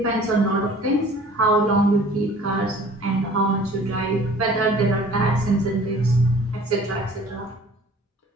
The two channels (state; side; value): normal; both; correlation 0.50